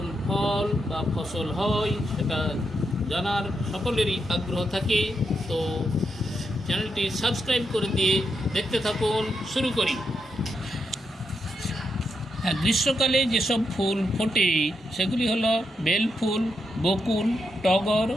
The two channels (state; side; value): normal; both; correlation 0.83